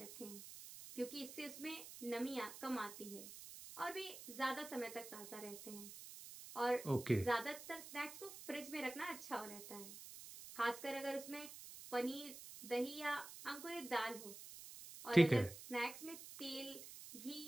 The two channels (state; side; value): noise; right; hiss, 12 dB below the sound